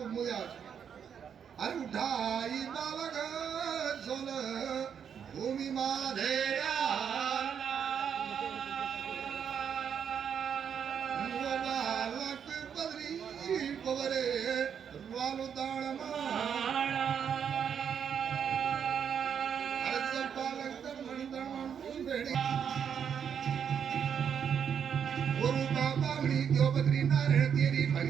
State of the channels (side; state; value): left; quieter; 7.8 dB